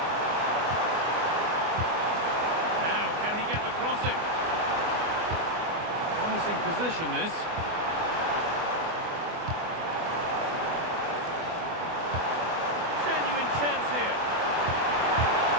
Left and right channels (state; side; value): late; left; 24 ms